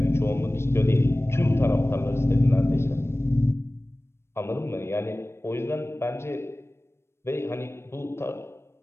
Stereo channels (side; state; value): right; late; 0.12 ms